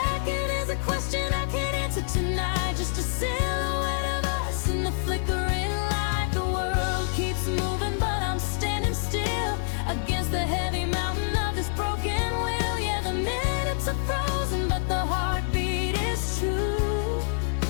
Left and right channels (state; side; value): silent; right; digital silence